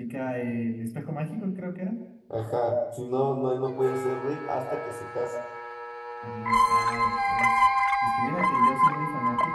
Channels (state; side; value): identical; both; correlation 1.00